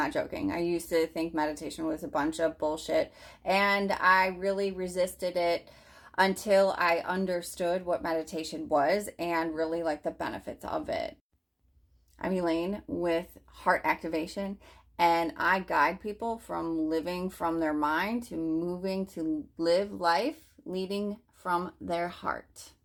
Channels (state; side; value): identical; both; correlation 1.00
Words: joking. I used to think meditation was a bunch of bullshit, and I really resisted it until I understood what meditation was and really like the benefits of it. I'm Elaine with Heart Activation, and I guide people from living from their mind to moving to live life leading from their heart.